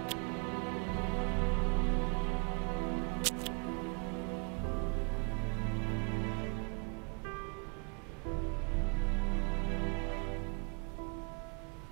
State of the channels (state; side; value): quieter; left; 34.5 dB